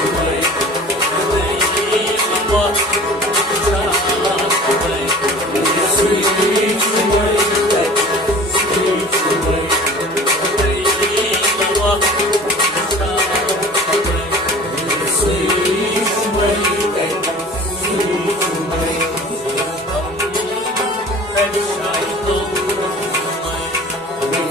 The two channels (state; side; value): normal; both; correlation 0.43